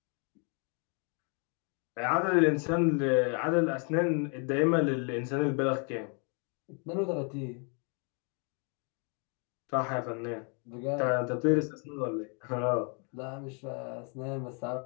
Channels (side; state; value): right; quieter; 38.4 dB